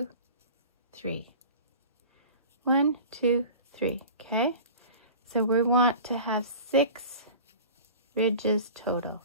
3. 1, 2, 3, okay? So we want to have 6 ridges total.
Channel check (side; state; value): both; inverted; correlation -0.39